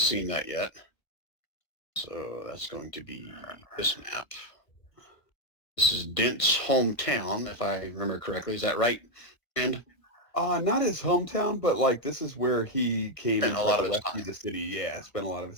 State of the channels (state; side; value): late; right; 1.5 ms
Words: that yet. So that's going to be this map. This is Dent's hometown, if I remember correctly. Is that right? And not his hometown, but like this is where he came and a lot of rescue the city. Yeah, spent a lot of